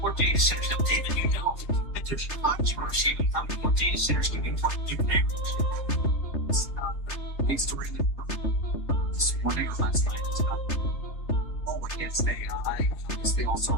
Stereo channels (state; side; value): late; right; 3.2 ms